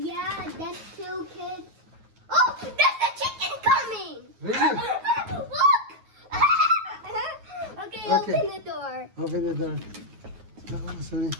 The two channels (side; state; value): left; late; 9.4 ms